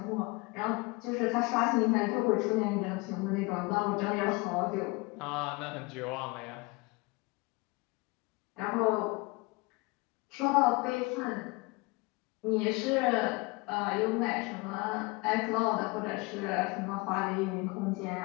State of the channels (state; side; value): quieter; right; 26.3 dB